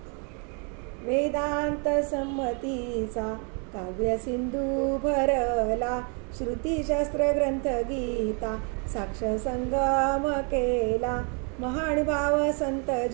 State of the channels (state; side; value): quieter; left; 37.4 dB